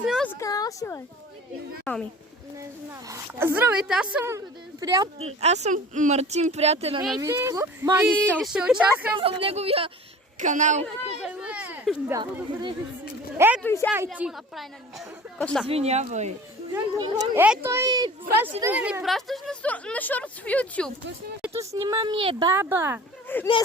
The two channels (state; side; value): normal; both; correlation 0.42